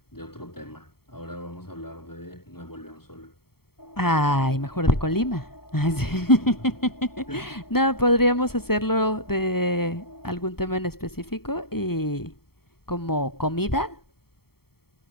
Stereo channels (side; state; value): right; late; 0.95 ms